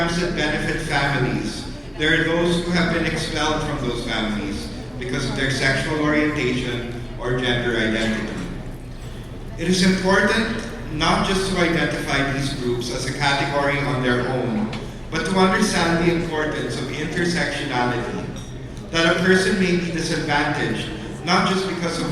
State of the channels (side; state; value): both; identical; correlation 1.00